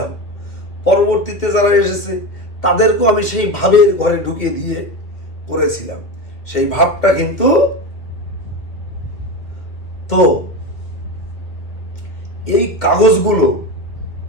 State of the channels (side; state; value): right; late; 2.3 ms